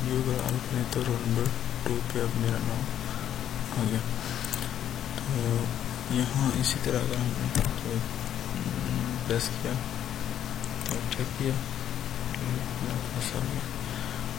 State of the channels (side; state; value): right; quieter; 10.4 dB